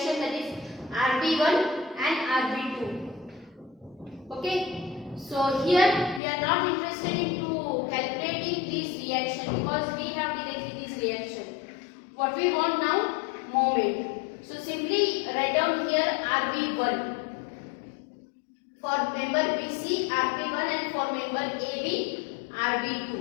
that is RB1 and RB2. Okay, so here we are not interested into calculating this reaction because we have directly this reaction. What we want now? Moment. So simply write down here RB1. For member BC, RB1, and for member AB,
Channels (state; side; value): drops out; right; at 6.2 s